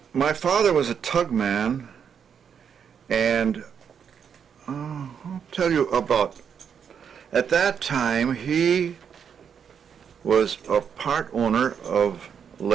my father was a tugman, and I'll tell you about, at that time he was a part owner of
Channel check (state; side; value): quieter; left; 7.4 dB